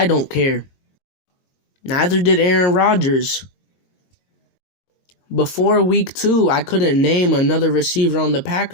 don't care. Neither did Aaron Rodgers. Before week 2, I couldn't name another receiver on the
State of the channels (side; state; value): right; late; 22 ms